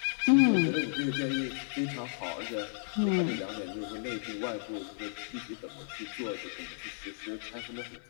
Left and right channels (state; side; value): silent; right; 56 dB below the other